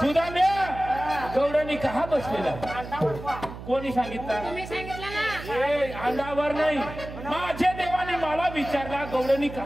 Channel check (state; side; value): noise; right; hum, 12 dB below the sound